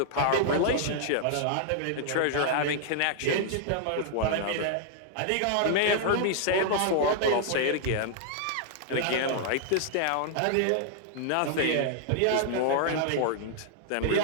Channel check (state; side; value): different; both; correlation -0.01